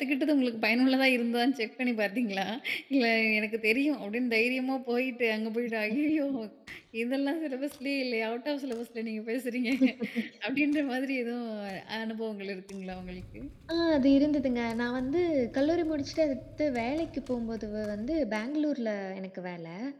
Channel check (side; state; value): both; identical; correlation 1.00